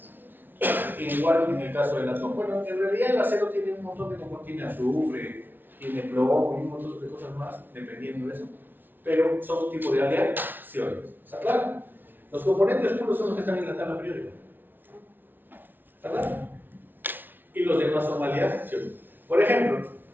Igual en el caso del átomo. Bueno, en realidad el acero tiene un montón de componentes. Tiene azufre, tiene plomo y un montón de cosas más, dependiendo de eso. Pero son un tipo de aleaciones. ¿Está claro? Los componentes puros son los que están en la tabla periódica. ¿Está claro? Y los demás son aleaciones. Por ejemplo,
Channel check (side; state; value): left; late; 0.093 ms